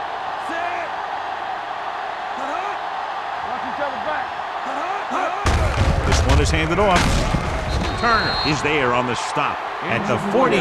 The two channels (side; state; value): both; identical; correlation 1.00